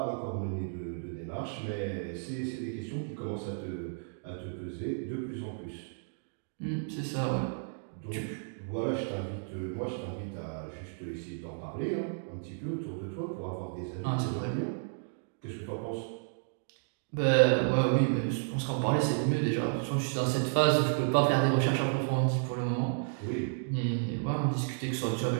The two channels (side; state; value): left; silent; digital silence